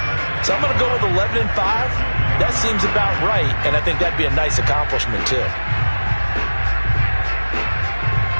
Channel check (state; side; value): inverted; both; correlation -1.00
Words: so I'm going to go with 11-5. That seems about right, and I think that'd be a nice accomplishment, too.